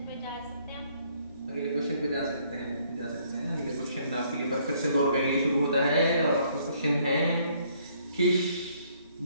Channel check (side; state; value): both; inverted; correlation -0.66